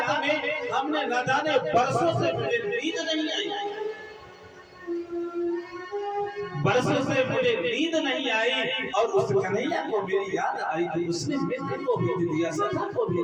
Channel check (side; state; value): both; identical; correlation 1.00